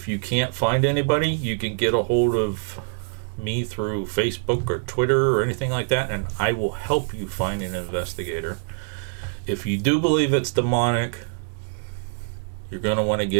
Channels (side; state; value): left; silent; digital silence